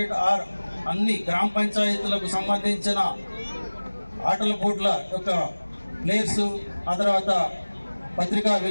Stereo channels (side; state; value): both; inverted; correlation -1.00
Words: అన్ని గ్రామ పంచాయతీలకు సంబంధించిన ఆటల పోటీల యొక్క ప్లేయర్స్, ఆ తర్వాత పత్రికా